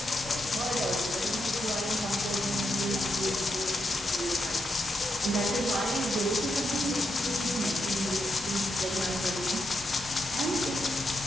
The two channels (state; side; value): normal; both; correlation 0.83